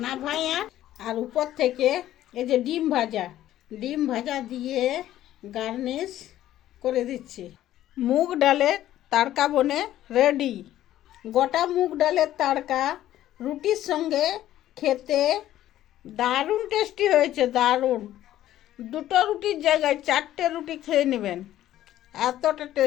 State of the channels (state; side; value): quieter; right; 13.1 dB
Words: নাভাইয়া আর উপর থেকে এই যে ডিম ভাজা দিয়ে গার্নিশ করে দিচ্ছি। মুগ ডালের তড়কা বনে রেডি। গোটা মুগ ডালের তড়কা রুটির সঙ্গে খেতে দারুণ টেস্টি হয়েছে, দারুণ। 2টো রুটির জায়গায় 4টে রুটি খেয়ে নেবেন, এতটা